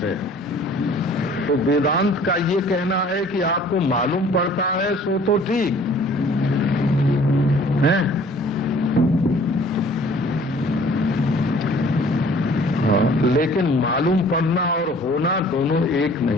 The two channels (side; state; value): both; normal; correlation 0.53